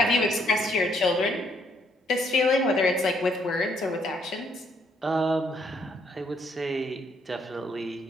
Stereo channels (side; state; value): both; normal; correlation 0.69